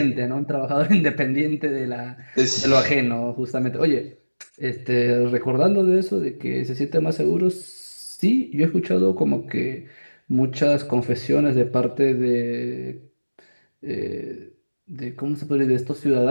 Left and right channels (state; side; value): inverted; both; correlation -1.00